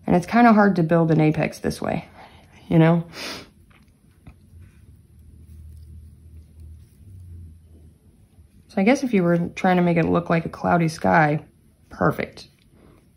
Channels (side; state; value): both; identical; correlation 1.00